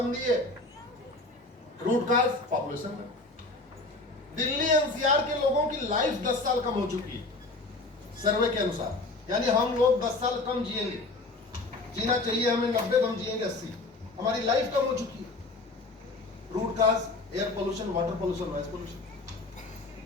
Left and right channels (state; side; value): quieter; right; 3.2 dB